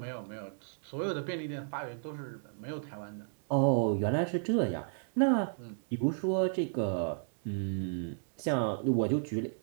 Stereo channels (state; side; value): silent; left; digital silence